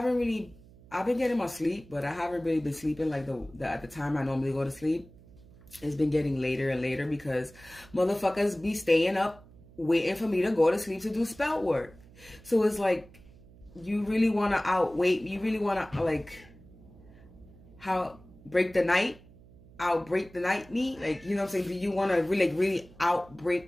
been getting my sleep, but I haven't really been sleeping like at the time I normally go to sleep. It's been getting later and later because motherfuckers be staying up waiting for me to go to sleep to do spell work. So it's like, you really want to outwait, you really want to like outbreak the night me, like, you know what I'm saying? Do you want to really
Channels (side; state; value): right; noise; hum, 23 dB below the sound